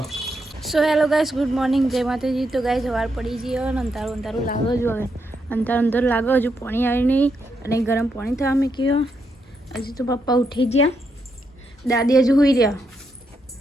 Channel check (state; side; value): normal; both; correlation 0.80